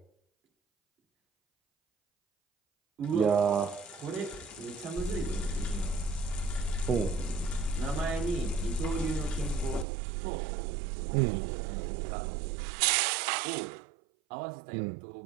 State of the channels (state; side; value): drops out; left; at 9.9 s